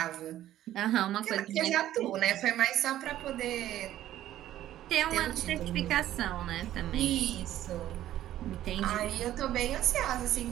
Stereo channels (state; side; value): quieter; left; 13.0 dB